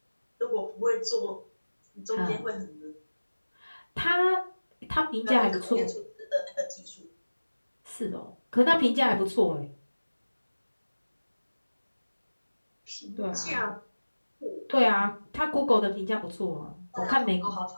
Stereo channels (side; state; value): both; inverted; correlation -1.00